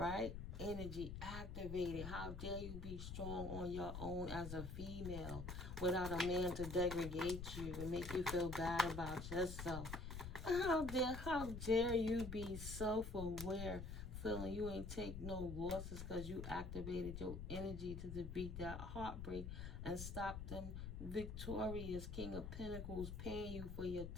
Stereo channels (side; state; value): left; noise; rumble, 6 dB below the sound